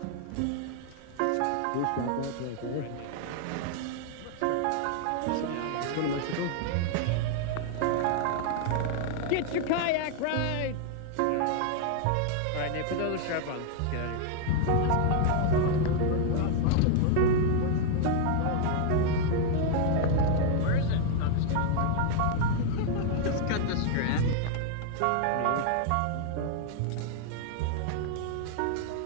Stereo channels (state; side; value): different; both; correlation 0.00